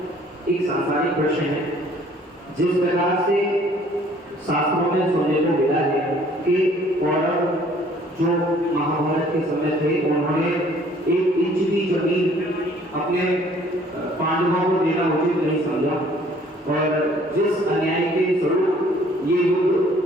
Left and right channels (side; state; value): both; normal; correlation 0.57